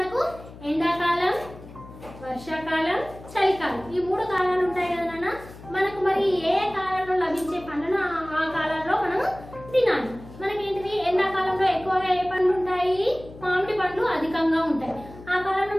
ఎండాకాలం, వర్షాకాలం, చలికాలం, ఈ 3 కాలాలు ఉంటాయి కదా నాన్న. మనకు మరి ఏ కాలంలో లభించే పండ్లను ఆ కాలంలో మనం తినాలి. మనకేంటిది? ఎండాకాలంలో ఎక్కువగా ఏ పండ్లు ఉంటాయి? మామిడి పండ్లు అధికంగా ఉంటాయి. ఆ కాలంలో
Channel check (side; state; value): left; noise; hum, 17 dB below the sound